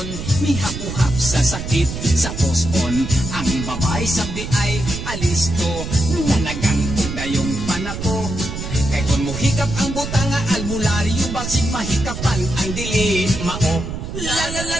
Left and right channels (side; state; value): right; noise; rumble, 7 dB below the sound